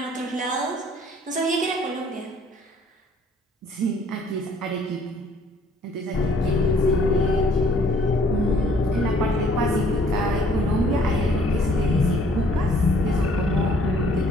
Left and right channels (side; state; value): both; normal; correlation 0.60